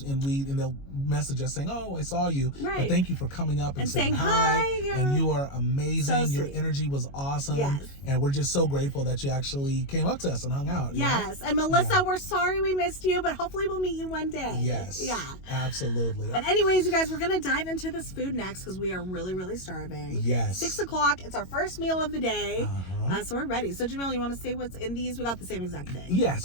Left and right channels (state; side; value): late; right; 22 ms